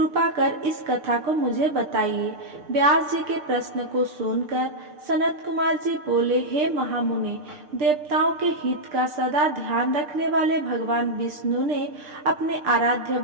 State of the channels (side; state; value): left; late; 6.7 ms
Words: कर इस कथा को मुझे बताइए। व्यास जी के प्रश्न को सुनकर सनत कुमार जी बोले, हे महामुनि, देवताओं के हित का सदा ध्यान रखने वाले भगवान विष्णु ने अपने आराध्य